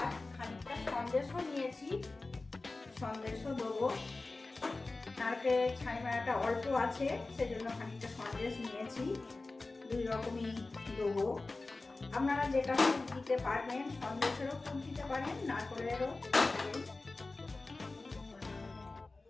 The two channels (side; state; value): right; quieter; 3.4 dB